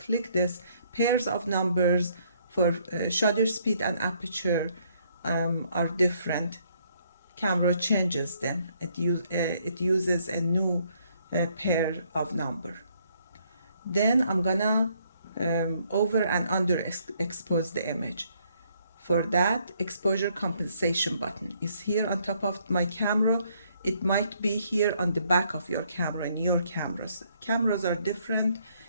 click this, pairs of numbers for shutter speed and aperture are different. Camera changes them. It uses a new pair of number. Then I'm gonna over and under expose the image. For that, exposure compensation button is here on top of my camera. It might be here on the back of your camera in your cameras. Cameras are different.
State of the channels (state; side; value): inverted; both; correlation -0.68